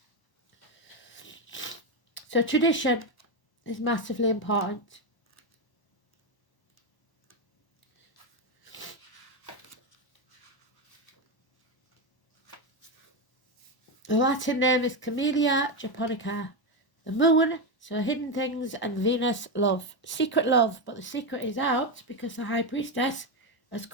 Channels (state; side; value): late; right; 1.1 ms